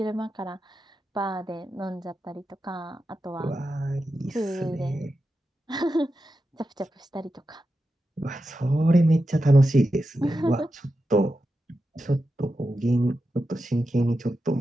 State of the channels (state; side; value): normal; both; correlation 0.90